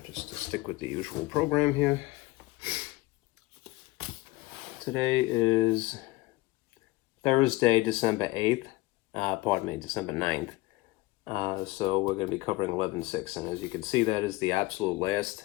Just to stick with the usual program here. Today is Thursday, December 8th, December 9th. So we're going to be covering 11.6, and as you can see, that is the absolute last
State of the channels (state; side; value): quieter; right; 20.2 dB